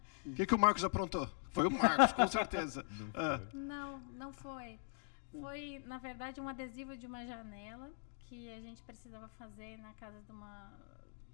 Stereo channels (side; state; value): right; silent; digital silence